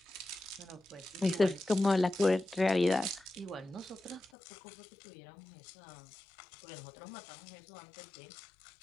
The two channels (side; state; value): right; drops out; at 4.3 s